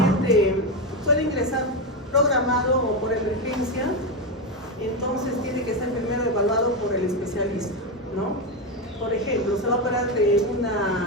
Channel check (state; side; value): normal; both; correlation 0.11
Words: puede ingresar programado o por emergencia, entonces tiene que ser primero evaluado por el especialista, ¿no? Por ejemplo, se va a operar de